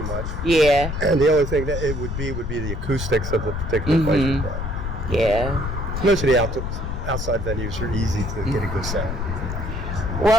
much. Yeah. And the only thing that it would be the acoustics of the particular place we play. Yeah. Most of the outside venues are easy to get a good sound.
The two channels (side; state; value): left; noise; rumble, 4 dB below the sound